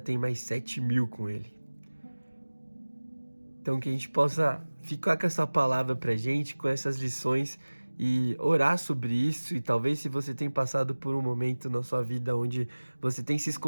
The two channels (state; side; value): inverted; both; correlation -1.00